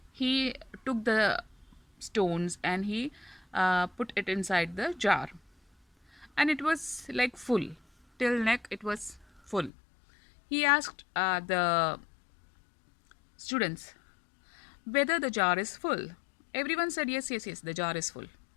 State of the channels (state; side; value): drops out; right; at 9.7 s